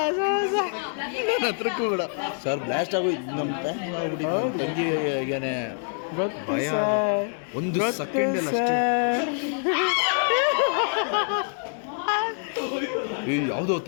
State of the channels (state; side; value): silent; right; 61 dB below the other